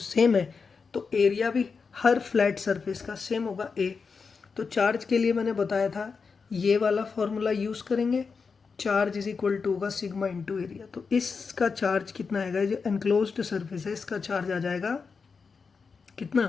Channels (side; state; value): right; quieter; 5.1 dB